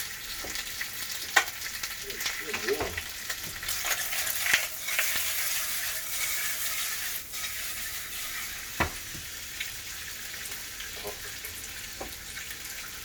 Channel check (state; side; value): identical; both; correlation 1.00